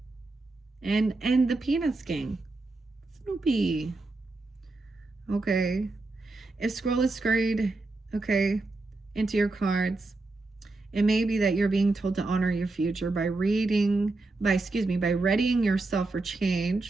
And the Peanuts gang. Snoopy. Okay. If scroll is scurried, okay, into your cards, it may be that you're being told to honor your future by readying yourself for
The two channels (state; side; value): quieter; left; 3.2 dB